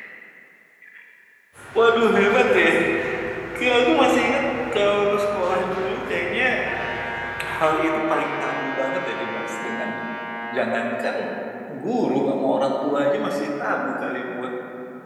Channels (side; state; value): both; identical; correlation 1.00